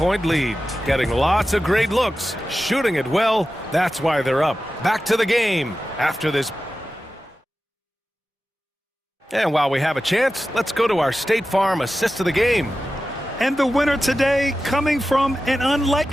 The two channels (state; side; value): normal; both; correlation 0.94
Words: lead. Getting lots of great looks, shooting it well. That's why they're up. Back to the game after this. And while we have a chance, let's go to our State Farm assist of the game. And the winner today coming from an